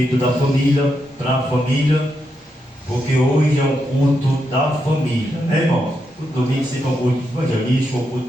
da família, para a família, porque hoje é um culto da família, né, irmão? O domingo sempre é um culto evangelístico, um culto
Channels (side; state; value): both; normal; correlation 0.83